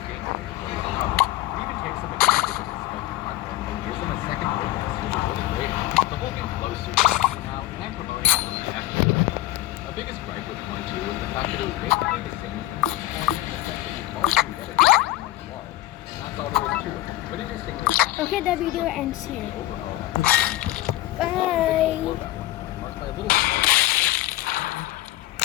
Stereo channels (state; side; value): quieter; right; 16.6 dB